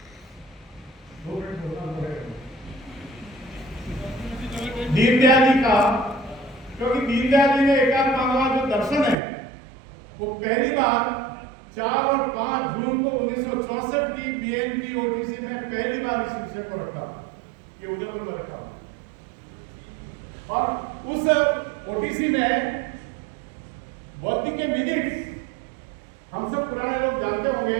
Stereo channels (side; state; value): left; drops out; at 9.2 s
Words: दीनदयाल जी का, क्योंकि दीनदयाल जी ने एकात्म मानववाद जो दर्शन है वो पहली बार 4 और 5 जून को 1964 की बीएनपी ओटीसी में पहली बार इस विषय को रखा, ये उदयपुर में रखा। और उस ओटीसी में बौद्धिक के मिनट्स हम सब पुराने लोग जानते होंगे,